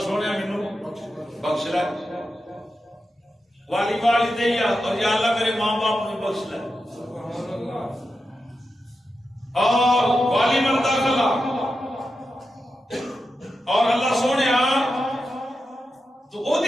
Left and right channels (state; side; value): normal; both; correlation 0.89